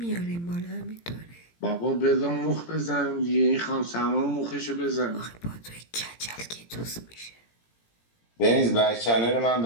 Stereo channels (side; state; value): right; late; 17 ms